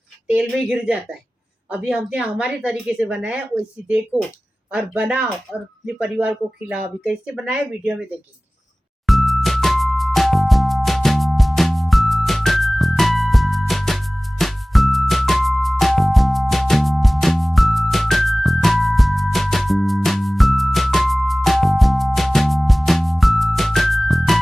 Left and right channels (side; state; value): both; normal; correlation 0.98